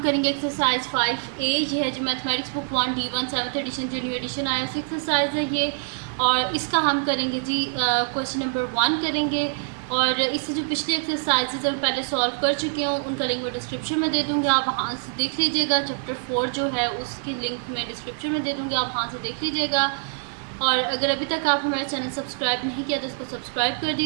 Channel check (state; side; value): silent; left; digital silence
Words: करेंगे एक्सरसाइज 5A। ये है जो mathematics book 1 D1 7th edition जो न्यू एडिशन आया उस एक्सरसाइज है ये। और इसका हम करेंगे जी क्वेश्चन नंबर 1 करेंगे। और इससे जो पिछली एक्सरसाइजेज हम पहले सॉल्व कर चुके हूँ उनका लिंक मैं डिस्क्रिप्शन में दे दूँगी, आप वहाँ से देख लीजिएगा। चैप्टर 4 जो है उसकी लिंक मैं डिस्क्रिप्शन में दे दूँगी, आप वहाँ से देख लीजिएगा। और अगर अभी तक आप हमारा चैनल सब्सक्राइब नहीं किया तो उसको सब्सक्राइब कर